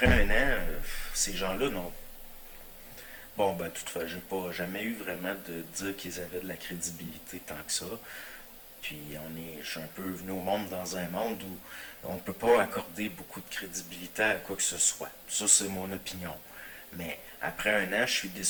un an, ces gens-là n'ont. Bon, ben, toutefois, j'ai pas jamais eu vraiment de dire qu'ils avaient de la crédibilité tant que ça. Puis je suis un peu venu au monde dans un monde où on ne peut pas accorder beaucoup de crédibilité à quoi que ce soit. Ça, c'est mon opinion. Mais après un an, je suis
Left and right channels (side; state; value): both; identical; correlation 1.00